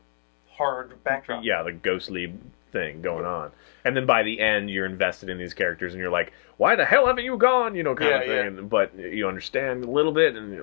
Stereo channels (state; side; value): silent; right; digital silence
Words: hard backdrop. Yeah, the ghostly thing going on, and then by the end you're invested in these characters and you're like, why the hell haven't you gone, kind of thing. But you understand a little bit, and